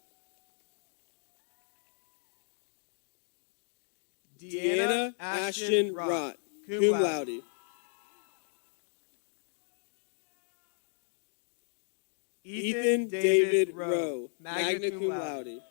Deanna Ashton Rott, cum laude. Ethan David Rowe, magna cum laude.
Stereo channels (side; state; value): right; silent; 55 dB below the other